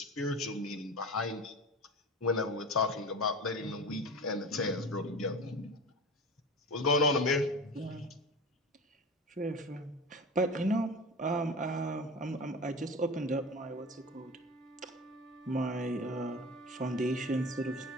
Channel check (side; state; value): both; normal; correlation 0.31